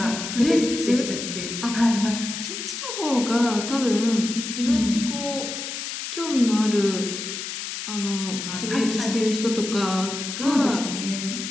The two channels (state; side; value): noise; left; hiss, 6 dB below the sound